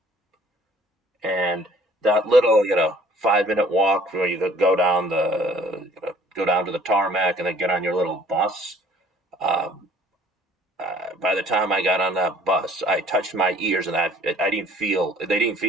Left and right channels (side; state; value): both; normal; correlation 0.54